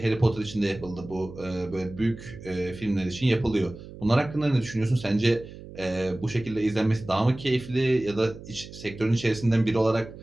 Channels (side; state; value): right; noise; hum, 15 dB below the sound